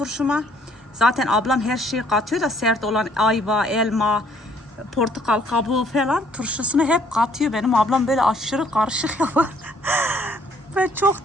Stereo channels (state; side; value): normal; both; correlation 0.63